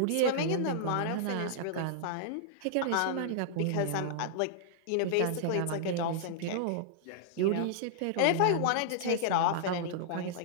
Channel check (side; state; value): both; different; correlation -0.01